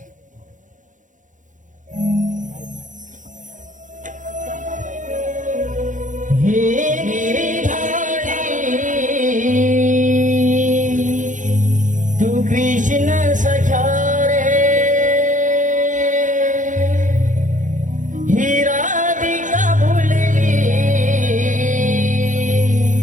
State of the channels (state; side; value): late; left; 0.37 ms